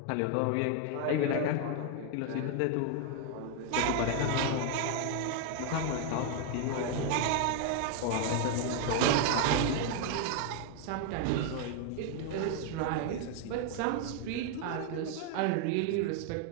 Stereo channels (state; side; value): different; both; correlation 0.00